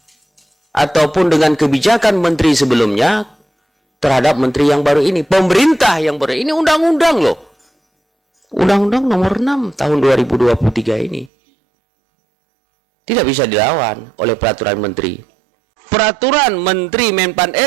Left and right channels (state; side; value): drops out; left; at 11.3 s